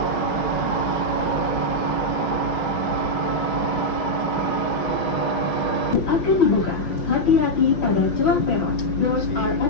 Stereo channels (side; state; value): right; late; 6.3 ms